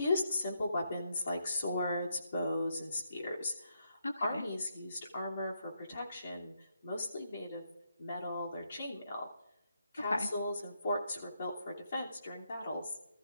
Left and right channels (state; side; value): inverted; both; correlation -0.79